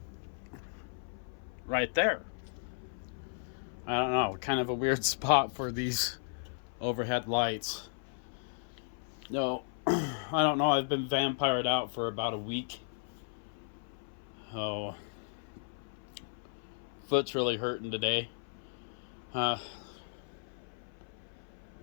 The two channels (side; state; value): right; silent; 54 dB below the other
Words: right there. I don't know, kind of a weird spot for these overhead lights. No, I don't know. I've been vampired out for about a week. Oh, foot's really hurting today. Uh,